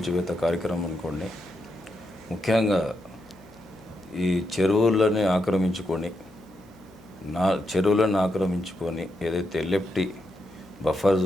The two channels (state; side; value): noise; left; hum, 28 dB below the sound